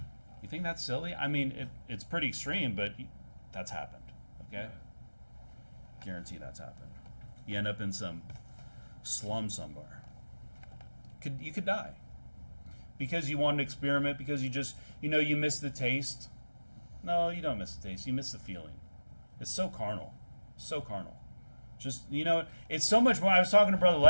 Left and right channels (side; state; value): both; inverted; correlation -1.00